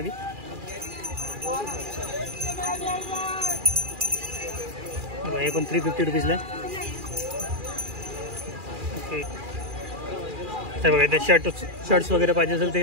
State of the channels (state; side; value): late; left; 2.4 ms